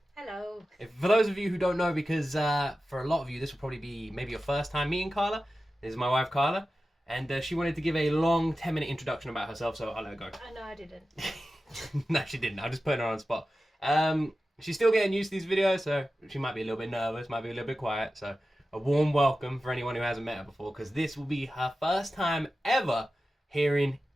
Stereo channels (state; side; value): normal; both; correlation 0.94